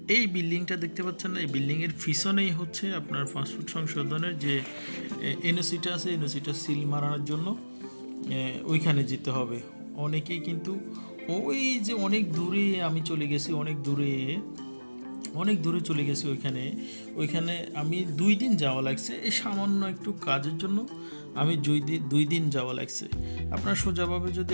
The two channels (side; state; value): both; inverted; correlation -1.00